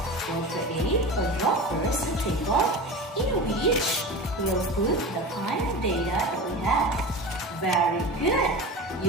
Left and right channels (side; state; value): both; normal; correlation 0.30